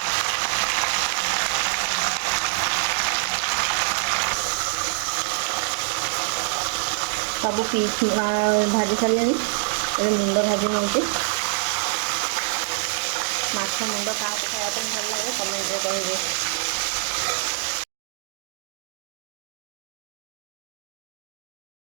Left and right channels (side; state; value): left; silent; digital silence